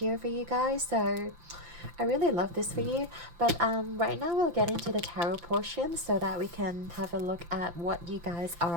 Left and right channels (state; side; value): late; left; 5.9 ms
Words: for you guys. So I really love this for you. But right now we'll get into the tarot portion so that we can have a look at what you guys